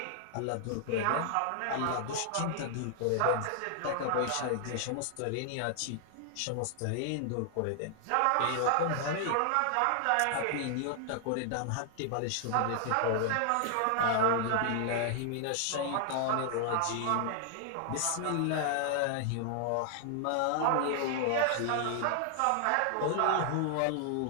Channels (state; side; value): different; both; correlation 0.00